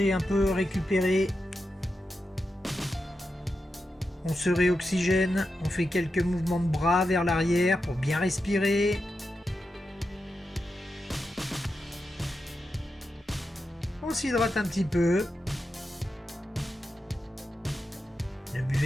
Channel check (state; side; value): normal; both; correlation 0.89